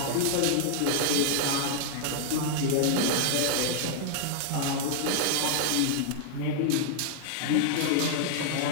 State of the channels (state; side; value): different; both; correlation 0.00